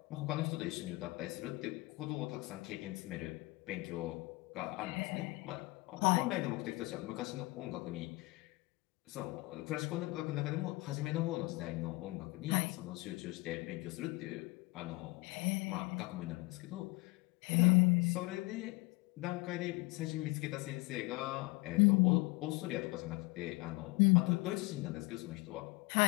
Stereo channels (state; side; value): quieter; right; 23.8 dB